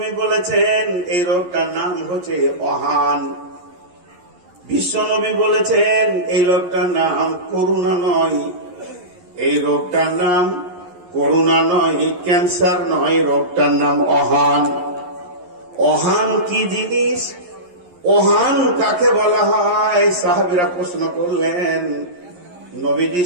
বলেছেন এই রোগটার নাম হচ্ছে অহান। বিশ্ব নবী বলেছেন এই রোগটার নাম করুণা নয়, এই রোগটার নাম করুণা নয়, ক্যান্সার নয়, রোগটার নাম অহান। অহান কি জিনিস? অহান কাকে বলা হয়? সাহাবীরা প্রশ্ন করলেন, নবীজি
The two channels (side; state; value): left; late; 11 ms